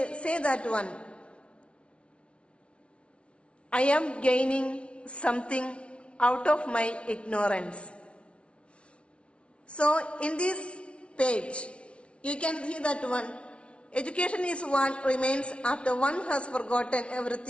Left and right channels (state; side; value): late; right; 0.060 ms